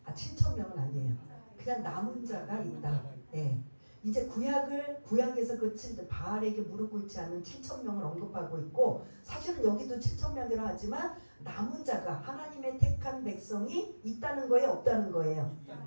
7,000명은 아니에요. 그냥 남은 자가 있다. 네. 이제 구약에서 바알에게 무릎 꿇지 않는 7,000명을 언급하고 있고, 사실은 여기도 7,000명이라 하지만 남은 자가 하나님의 택한 백성이 있다는 거예요, 없다는 거예요?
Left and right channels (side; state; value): both; inverted; correlation -1.00